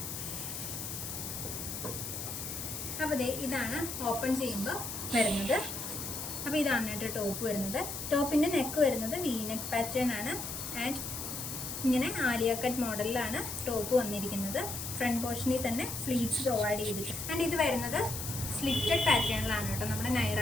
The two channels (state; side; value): noise; left; hiss, 6 dB below the sound